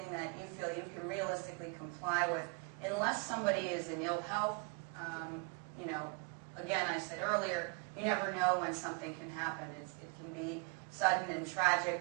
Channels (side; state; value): left; quieter; 32.9 dB